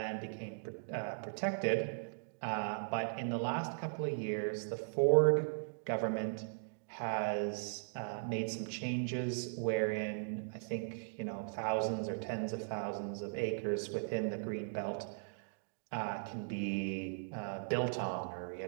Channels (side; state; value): left; silent; digital silence